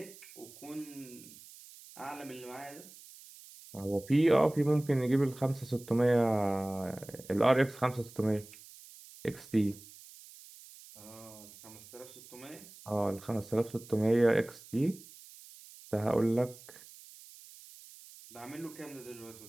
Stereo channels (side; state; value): right; noise; hiss, 19 dB below the sound